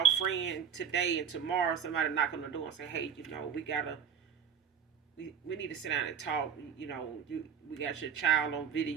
friend today, and tomorrow somebody knock on the door and say, hey, we need to sit down and talk. We got your child on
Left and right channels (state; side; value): quieter; left; 7.7 dB